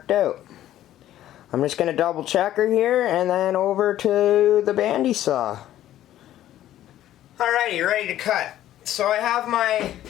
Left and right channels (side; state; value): right; quieter; 12.9 dB